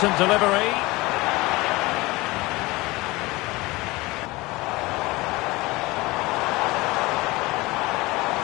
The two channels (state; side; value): quieter; right; 21.8 dB